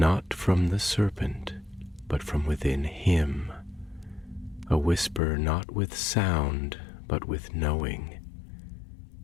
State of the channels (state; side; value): drops out; right; at 5.2 s